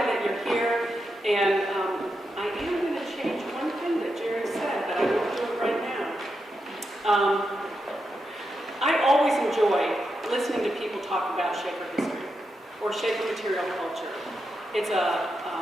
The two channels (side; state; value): both; normal; correlation 0.86